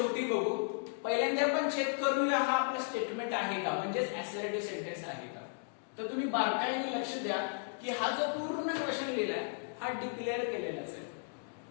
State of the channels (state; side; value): silent; right; digital silence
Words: बघू. पहिल्यांदा आपण चेक करूया हा आपला स्टेटमेंट आहे का, म्हणजेच असर्टिव्ह सेंटेन्स आहे का. तर तुम्ही बारकाईने लक्ष द्या की हा जो पूर्ण क्वेश्चन लिहिलाय हा डिक्लेअर केलेलाच आहे.